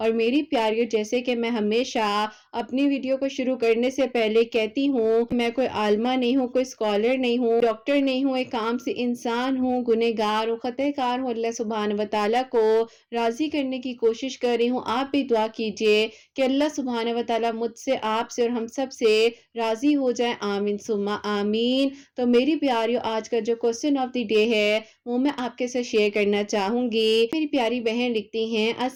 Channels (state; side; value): identical; both; correlation 1.00